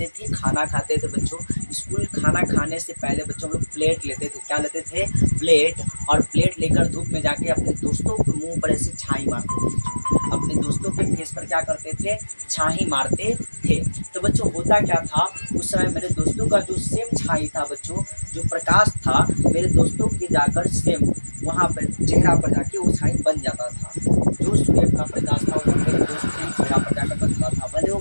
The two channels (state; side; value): inverted; both; correlation -1.00